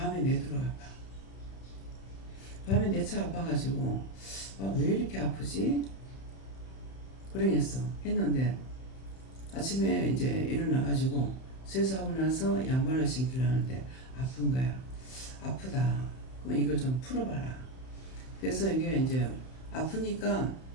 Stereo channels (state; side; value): late; right; 31 ms